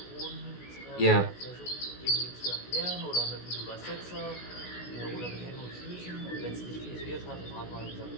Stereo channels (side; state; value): right; late; 16 ms